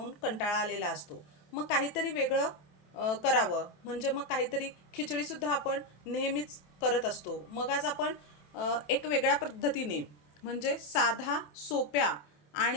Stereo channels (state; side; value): late; right; 27 ms